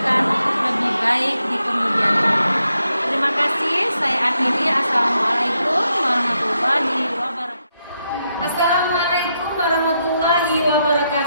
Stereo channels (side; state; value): both; inverted; correlation -0.81